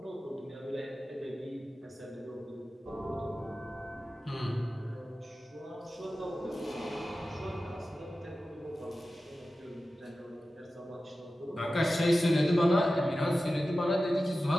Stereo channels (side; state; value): both; normal; correlation 0.94